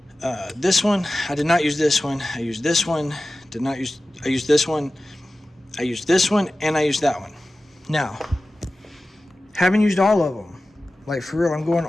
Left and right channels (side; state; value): both; normal; correlation 0.95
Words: this one. I did not use this one. I used this one. I used this one. I used this one, and I used that one. Now, haven't used all of them. Like for real, I'm going